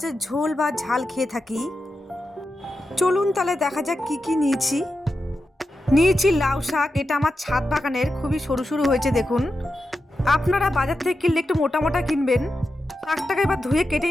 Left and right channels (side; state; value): both; normal; correlation 0.89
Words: ঝোল বা ঝাল খেয়ে থাকি। চলুন তাহলে দেখা যাক কি কি নিয়েছি লাউ শাক। এটা আমার ছাদ বাগানের, খুবই সরু সরু হয়েছে দেখুন। আপনারা বাজার থেকে কিনলে একটু মোটা মোটা কিনবেন। শাকটাকে এবার ধুয়ে কেটে